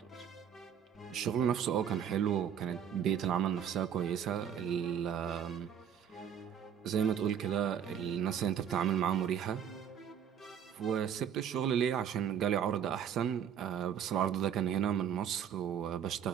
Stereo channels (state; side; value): quieter; left; 8.6 dB